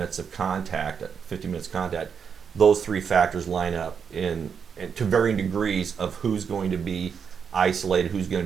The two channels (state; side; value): quieter; left; 6.7 dB